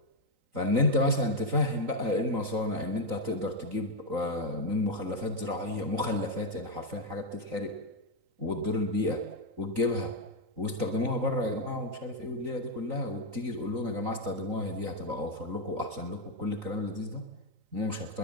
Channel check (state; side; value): late; left; 3.9 ms